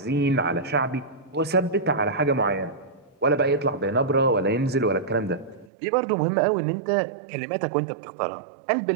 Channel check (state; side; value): drops out; left; at 5.7 s